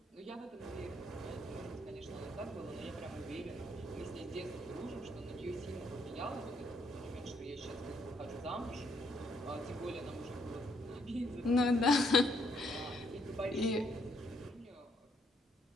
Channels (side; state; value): both; normal; correlation 0.71